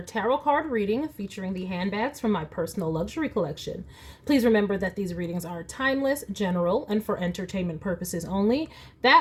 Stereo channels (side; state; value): both; identical; correlation 1.00